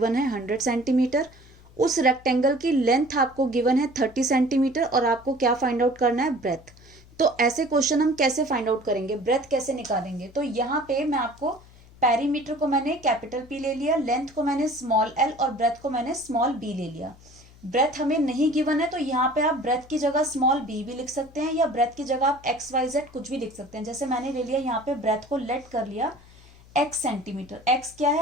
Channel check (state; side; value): noise; left; hum, 24 dB below the sound